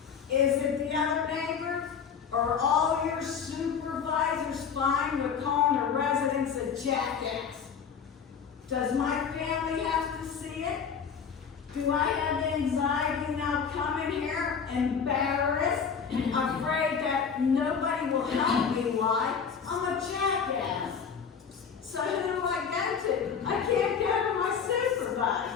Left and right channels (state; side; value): quieter; right; 6.6 dB